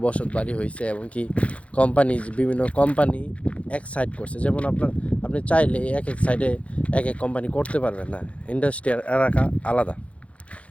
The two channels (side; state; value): right; late; 0.063 ms